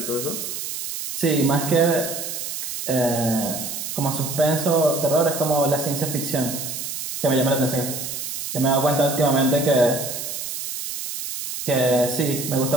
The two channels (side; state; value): right; noise; hiss, 6 dB below the sound